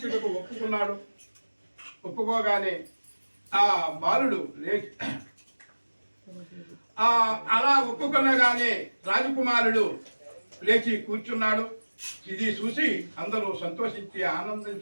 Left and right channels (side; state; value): both; inverted; correlation -1.00